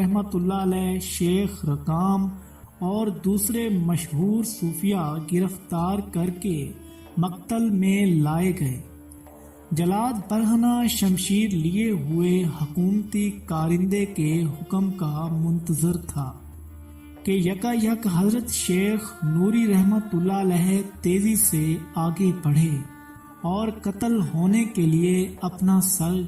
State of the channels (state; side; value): identical; both; correlation 1.00